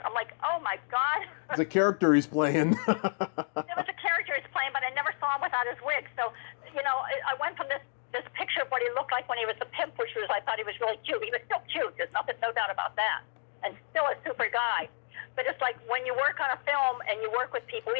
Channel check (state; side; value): silent; right; digital silence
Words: I'm like, oh my God. It's a character he's playing. It was a character he's playing, but I never saw him without his wig. So, I went from this this picture of what he looked like when he was a pimp, which was, I thought he was really cute. He was still cute. There's no doubt about that. And still a super guy. But it's like when you work on a film and you work with people,